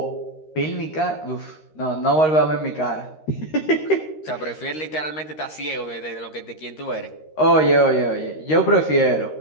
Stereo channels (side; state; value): right; late; 13 ms